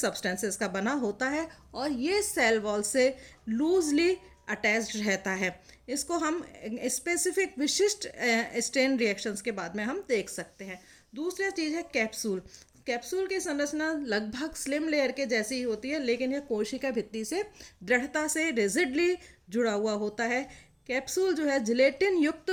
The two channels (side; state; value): both; identical; correlation 1.00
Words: का बना होता है और ये सेल वॉल से लूजली अटैच्ड रहता है। इसको हम स्पेसिफिक विशिष्ट स्टेन रिएक्शंस के बाद में हम देख सकते हैं। दूसरी चीज़ है कैप्सूल। कैप्सूल की संरचना लगभग स्लिम लेयर के जैसी ही होती है, लेकिन यह कोशिका भित्ति से दृढ़ता से रिजिडली जुड़ा हुआ होता है। कैप्सूल जो है जिलेटिन युक्त